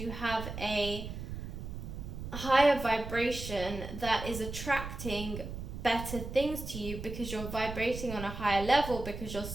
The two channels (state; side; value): noise; right; rumble, 8 dB below the sound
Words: have a higher vibration that is attracting better things to you because you're vibrating on a higher level because you're